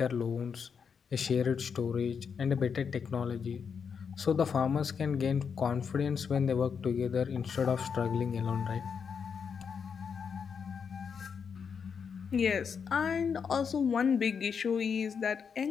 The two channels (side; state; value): right; quieter; 6.4 dB